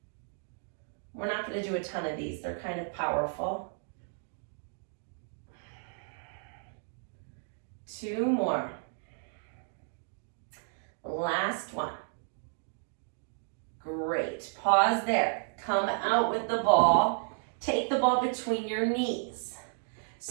We're not gonna do a ton of these. They're kind of powerful. 2 more. Last one. Great. Pause there. Come out with the ball. Take the ball between your knees.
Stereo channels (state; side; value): silent; left; 56 dB below the other